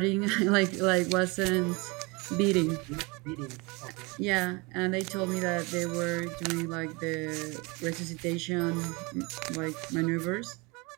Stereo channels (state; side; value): quieter; left; 27.0 dB